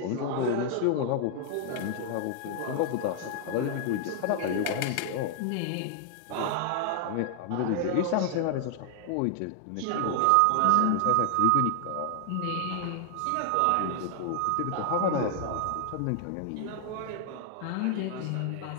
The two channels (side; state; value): both; different; correlation 0.00